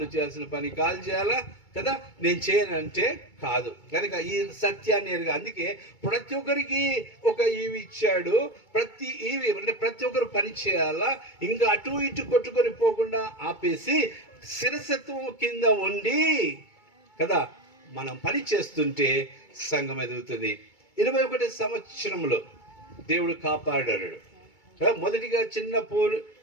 చేయాల్సిన పని కాళ్ళు చేయాలా కదా. నేను చేయనంటే కాదు. కనుక ఈ సత్యాన్ని ఎరుగా. అందుకే ప్రతి ఒక్కరికి ఒక ఈవి ఇచ్చాడు. ప్రతి ఈవి అంటే ప్రతి ఒక్కరు పని చేయాలా. ఇంకా అటు ఇటు కొట్టుకొని పోకుండా ఆపేసి శిరసత్వం కింద ఉండి కదా మనం పని చేస్తుంటే సంఘం ఎదుగుతుంది. 21 సంవత్సరంలో దేవుడు కాపాడాడు. మొదటిగా చిన్న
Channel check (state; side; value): late; right; 2.3 ms